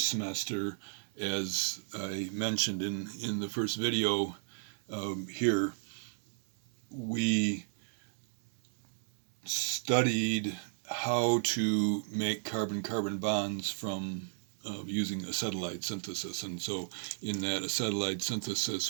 semester, as I mentioned in the first video here, we studied how to make carbon-carbon bonds from using acetylide synthesis. And so in that acetylide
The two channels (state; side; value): silent; left; digital silence